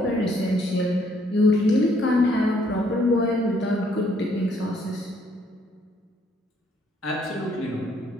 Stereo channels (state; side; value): normal; both; correlation 0.67